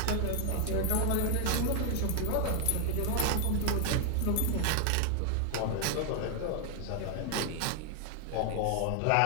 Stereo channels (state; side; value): different; both; correlation 0.00